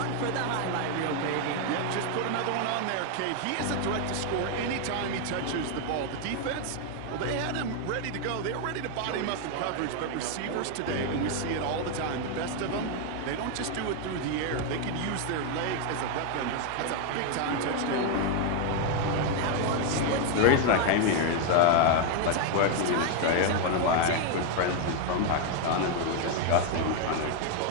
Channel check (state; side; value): different; both; correlation 0.01